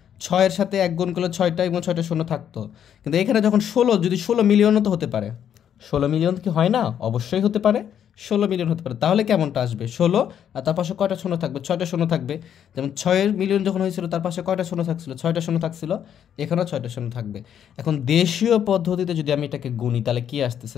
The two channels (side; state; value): right; quieter; 9.2 dB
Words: 6-এর সাথে 1 গুণ করলে 6টা এবং 6টা শূন্য থাকতো, কিন্তু এখানে যখন 16, যদি 16 মিলিয়নও তো হতে পারে। 16 মিলিয়ন কি হয় না? অবশ্যই হতে পারে। 16 মিলিয়ন হতে পারে। তাহলে কেমনটা আসবে? 16 আর তার পাশে কয়টা শূন্য থাকবে? 6টা শূন্য থাকবে। যেমন 6 মিলিয়ন যখন হয়েছিল তার পাশে কয়টা শূন্য থাকছিল? 6টা শূন্য থাকছিল। এখানেও 6টা শূন্য থাকবে। এখন দেশীয় পদ্ধতিতে যদি আমি এটাকে গুনি তাহলে কি আসতেছে